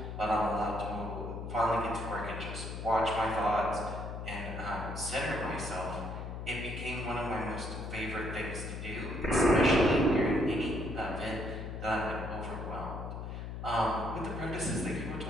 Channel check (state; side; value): noise; left; hum, 7 dB below the sound